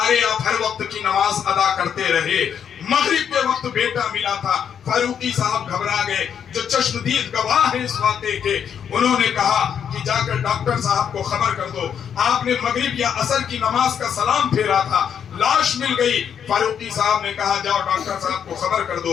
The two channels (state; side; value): quieter; right; 8.1 dB